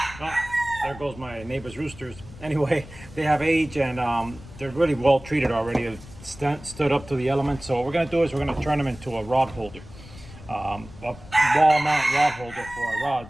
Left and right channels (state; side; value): noise; left; rumble, 18 dB below the sound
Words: Oh, there goes my neighbor's roosters. Anyway, they have age and they're really well treated already. They've stood up to the elements. So what we're going to do is we're going to turn them into a rod holder. A wall mount rod holder for our